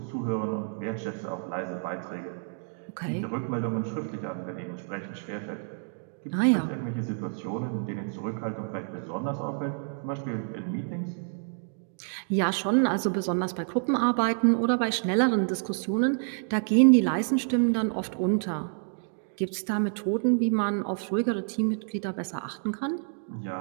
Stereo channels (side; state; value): left; silent; 59 dB below the other